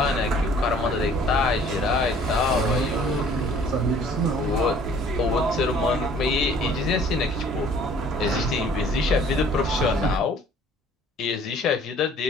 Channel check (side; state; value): both; normal; correlation 0.54